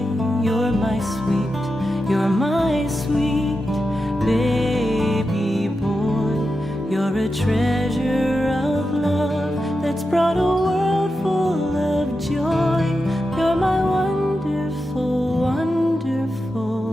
you're my sweet baby boy. You're a treasure of love. brought a world full of joy. You're my wonderful,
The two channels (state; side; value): normal; both; correlation 0.90